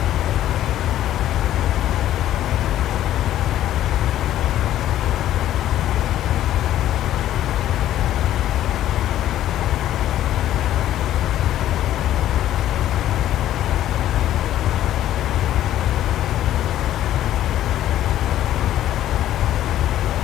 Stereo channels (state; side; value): quieter; right; 12.6 dB